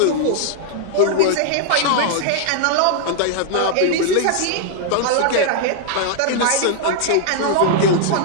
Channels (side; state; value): both; different; correlation 0.00